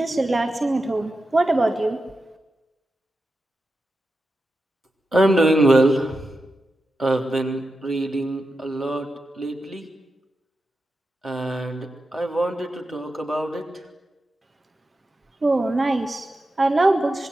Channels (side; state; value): both; normal; correlation 0.90